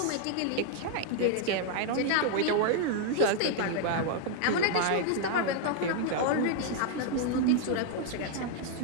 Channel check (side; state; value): both; different; correlation 0.00